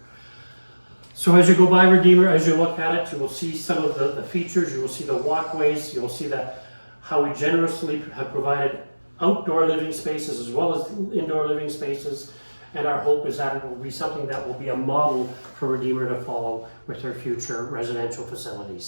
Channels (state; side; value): inverted; both; correlation -1.00